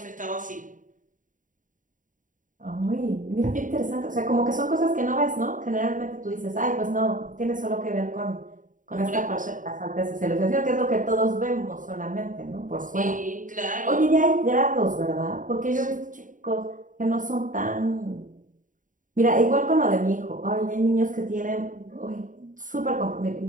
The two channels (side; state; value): left; late; 0.38 ms